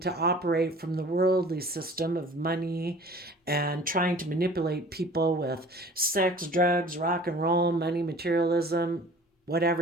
operate from the worldly system of money and trying to manipulate people with sex, drugs, rock and roll, money, materialism,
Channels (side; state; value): both; normal; correlation 0.46